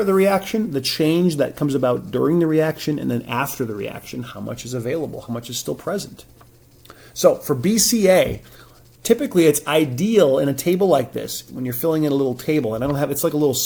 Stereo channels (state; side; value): identical; both; correlation 1.00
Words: the reaction, the change that comes about during the reaction, and then after the reaction, how much is available, how much is still present. So for BCA, typically it's ideal in a table like this, when you're filling in a little table, and it's like a little